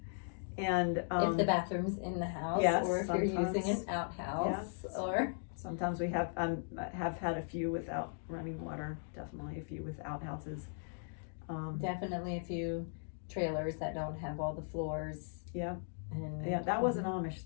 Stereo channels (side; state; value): right; silent; digital silence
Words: And if the bathroom's in the house, yes, or if you're using an outhouse, yes. or sometimes we have had a few without running water. Definitely a few with outhouses. Definitely a few trailers that don't have all the floors. Yeah. And, yeah, that wasn't Amish